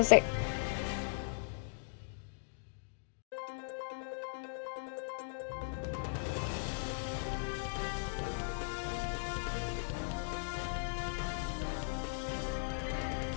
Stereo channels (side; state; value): right; silent; digital silence